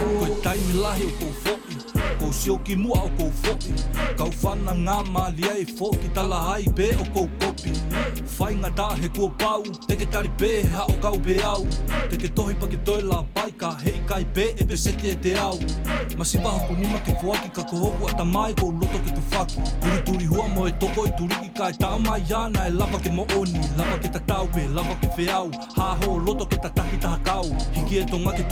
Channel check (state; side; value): identical; both; correlation 1.00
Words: Koe taimi lahi o kou foki, kou sioki mua o kou foki. Kau whana ngā malia e foki, tala hai pe o kou kopi. Whainga tā he kua pau, teke tari pē ha o kau pe au. Teke tohi pa ke toi la pai ka hei kai pē e pe seti e te au. Masi waho ku nima ke fuaki ka kohoku ata mai kou loto ke tu whaki. Turi turi hua mo e toko i turiki ka e tau mai ana e lava ke mooni. Lava ke ta tau pe, lava ke whiau. Ha ho loto ke ta taki taha kau. Hiki e tonga ke